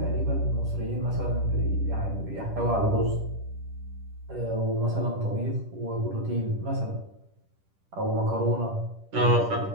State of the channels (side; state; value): left; late; 10 ms